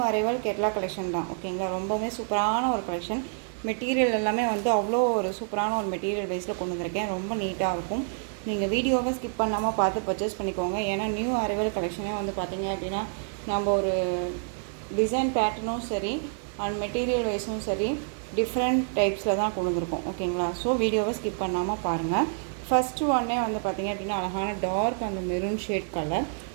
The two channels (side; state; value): left; silent; digital silence